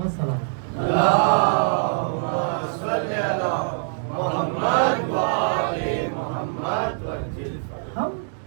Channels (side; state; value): left; silent; digital silence